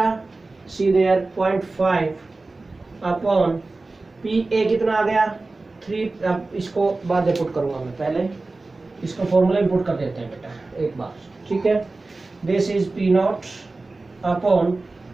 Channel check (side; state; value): left; quieter; 3.4 dB